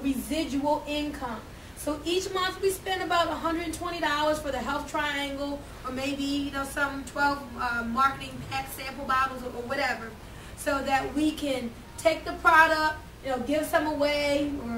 income. So each month we spend about $120 for the health triangle, or maybe some 12 marketing pack sample bottles or whatever, so that we can take the product, give some away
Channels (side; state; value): both; identical; correlation 1.00